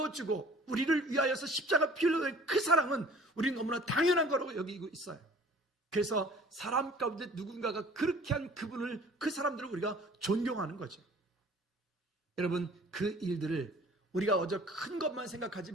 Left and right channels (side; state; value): both; normal; correlation 0.50